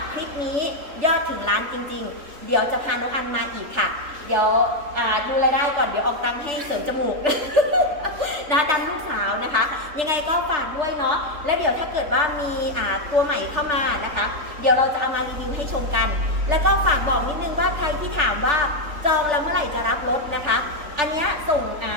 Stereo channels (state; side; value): late; left; 3.4 ms